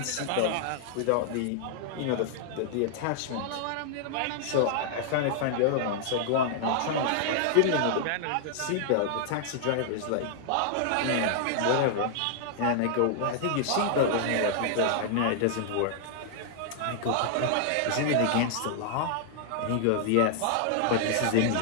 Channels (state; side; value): different; both; correlation -0.01